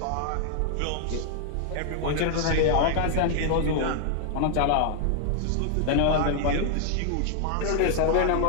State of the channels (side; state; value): both; different; correlation 0.00